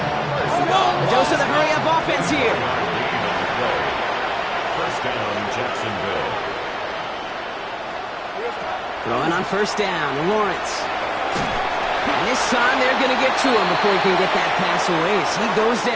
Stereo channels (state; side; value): identical; both; correlation 1.00